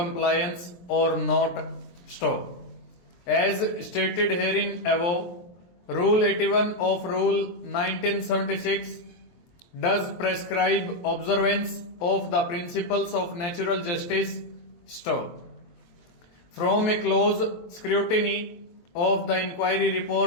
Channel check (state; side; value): late; right; 23 ms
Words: or not. Stop. As stated herein above, Rule 81 of Rule 1976 does prescribe observance of the principles of natural justice. Stop. From a close scrutiny of the inquiry